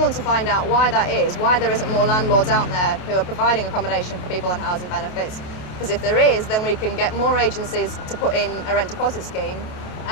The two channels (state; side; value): late; right; 28 ms